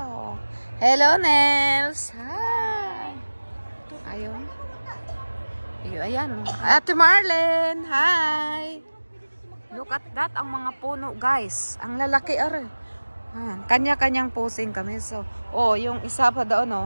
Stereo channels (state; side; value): inverted; both; correlation -1.00